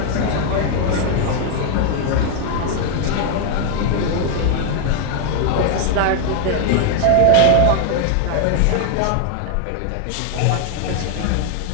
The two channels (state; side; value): different; both; correlation 0.00